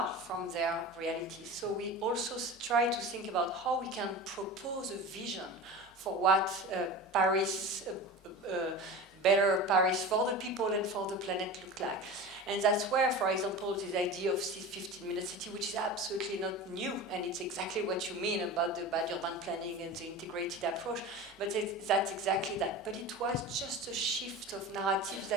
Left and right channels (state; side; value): normal; both; correlation 0.31